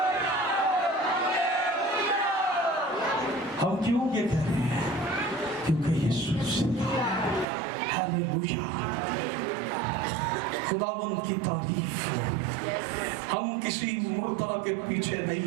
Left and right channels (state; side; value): drops out; left; at 7.5 s